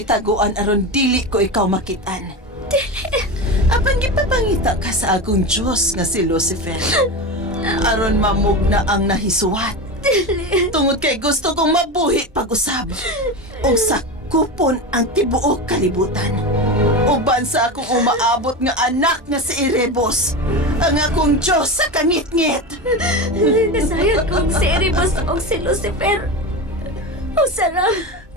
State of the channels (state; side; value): normal; both; correlation 0.22